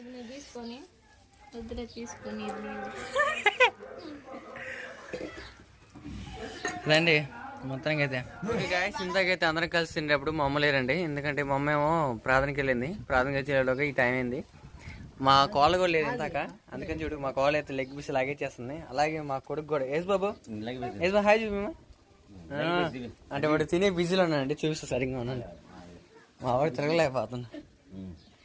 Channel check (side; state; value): both; identical; correlation 1.00